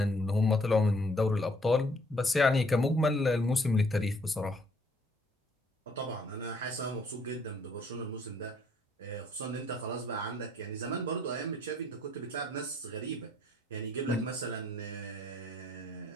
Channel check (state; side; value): normal; both; correlation 0.64